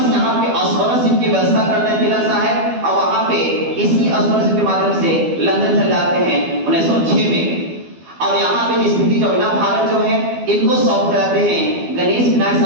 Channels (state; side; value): late; left; 12 ms